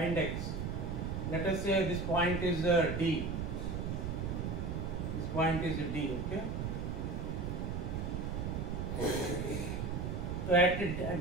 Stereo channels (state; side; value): noise; right; rumble, 2 dB below the sound